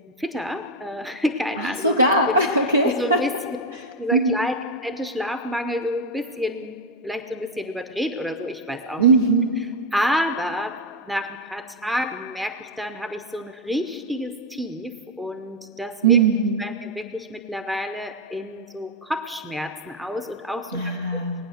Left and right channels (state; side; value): normal; both; correlation 0.04